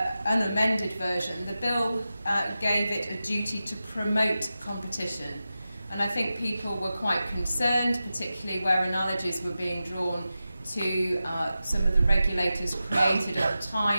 unamended version. The bill gave it a duty to promote competition. And I think people were quite concerned, particularly where analogies were being drawn to some of the regulators created at the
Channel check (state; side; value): inverted; both; correlation -0.93